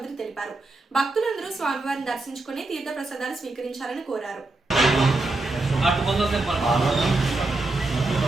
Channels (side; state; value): left; quieter; 3.0 dB